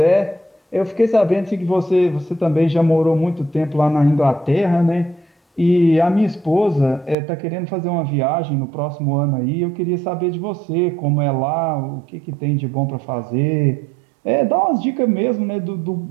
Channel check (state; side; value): drops out; left; at 7.2 s